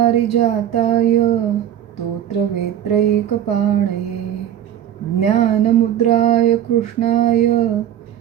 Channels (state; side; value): quieter; left; 10.8 dB